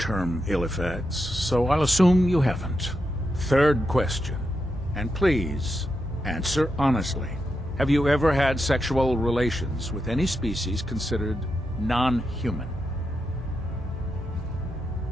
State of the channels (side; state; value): both; normal; correlation 0.85